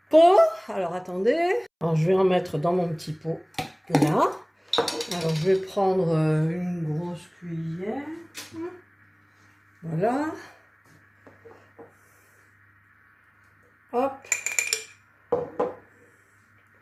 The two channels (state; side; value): identical; both; correlation 1.00